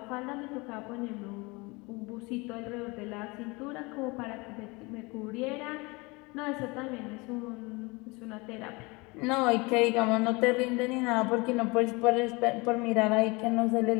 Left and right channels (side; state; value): right; quieter; 25.8 dB